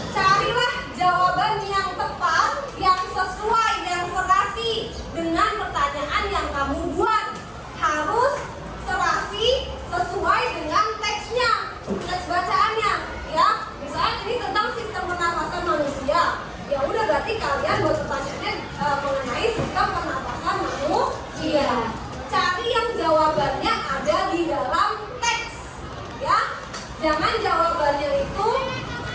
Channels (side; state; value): both; identical; correlation 1.00